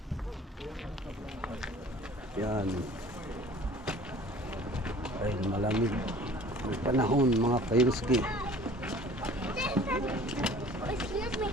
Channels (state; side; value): normal; both; correlation 0.48